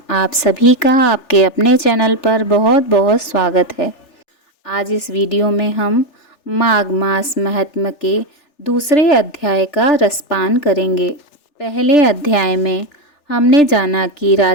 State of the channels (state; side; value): late; right; 3.4 ms